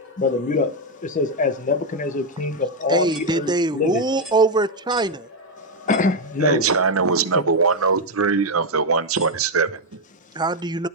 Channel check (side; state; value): both; normal; correlation 0.03